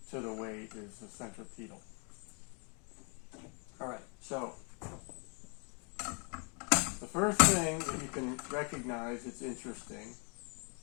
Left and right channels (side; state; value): right; quieter; 36.8 dB